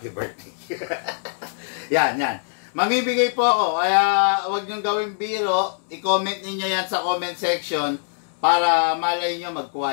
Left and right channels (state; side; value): silent; right; 64 dB below the other